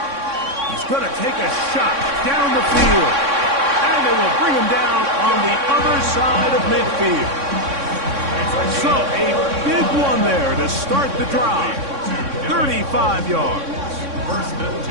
He's going to take a shot down the field. And it will bring him down on the other side of midfield. So, a big one there to start the drive. 35 yards.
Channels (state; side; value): late; left; 3.6 ms